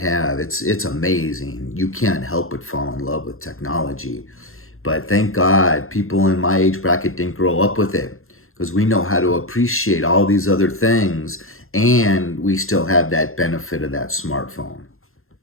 It's amazing. You can't help but fall in love with technology. But thank God people in my age bracket didn't grow up with it, because we know how to appreciate all these other things, and we still have that benefit of that smartphone.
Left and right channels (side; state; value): right; late; 0.61 ms